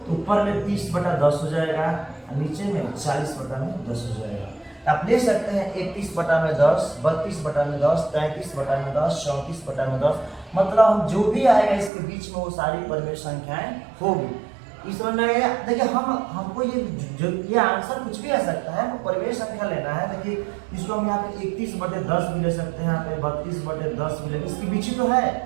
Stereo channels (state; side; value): drops out; left; at 11.9 s